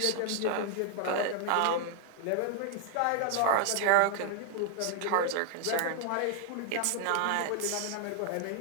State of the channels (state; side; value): different; both; correlation 0.01